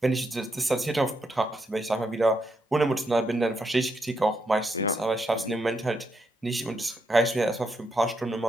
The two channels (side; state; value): both; normal; correlation 0.80